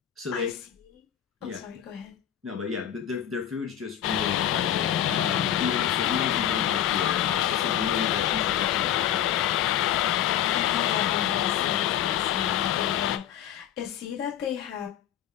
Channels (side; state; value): right; quieter; 10.7 dB